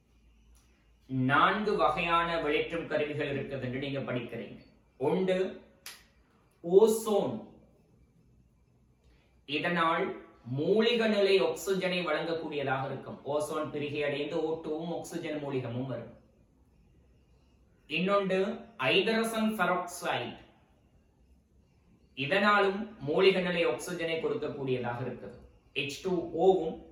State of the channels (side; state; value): both; identical; correlation 1.00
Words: 4 வகையான வெளியேற்றும் கருவிகள் இருக்குது என்று நீங்க படிக்கிறீங்க. ஒன்று ஓசோன். இதனால் மூலிக நிலை ஆக்சிஜனை வழங்கக்கூடியதாக இருக்கும். ஓசோன் பிரிகை அடைந்து O2வும் ஆக்சிஜன் மூலிகமும் வரும். இன்னொன்று ஹைட்ரஜன் பெராக்சைடு. இதனாலும் மூலிக நிலை ஆக்சிஜனை கொடுக்கக்கூடியதாக இருக்குது. H2O-வும்